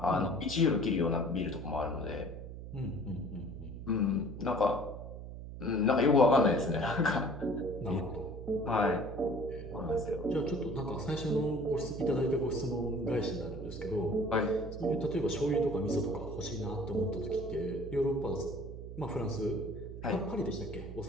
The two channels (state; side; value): noise; right; hum, 10 dB below the sound